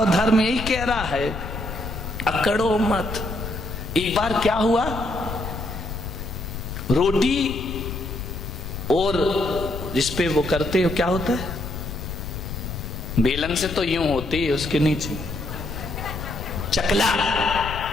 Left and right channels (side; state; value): left; noise; rumble, 7 dB below the sound